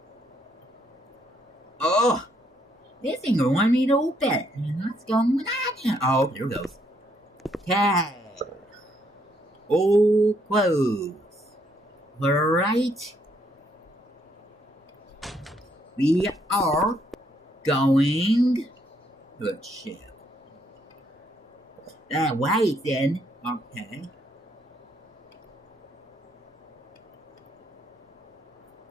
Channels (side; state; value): both; normal; correlation 0.71